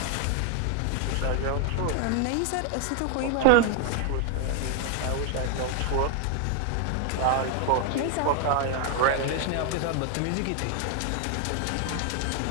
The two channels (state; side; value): different; both; correlation 0.00